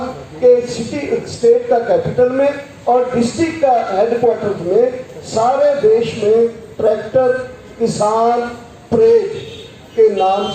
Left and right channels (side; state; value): both; identical; correlation 1.00